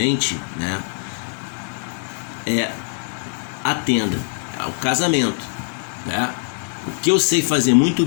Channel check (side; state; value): right; silent; 57 dB below the other